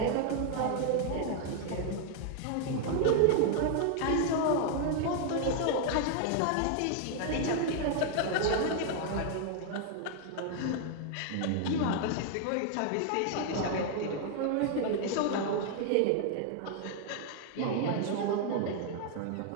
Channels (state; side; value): different; both; correlation 0.00